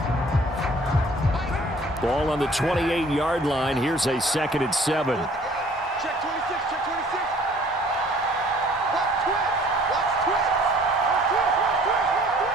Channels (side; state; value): both; normal; correlation 0.54